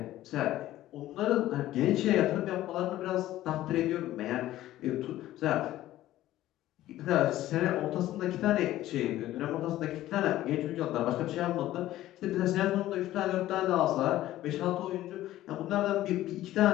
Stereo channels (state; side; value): quieter; right; 14.6 dB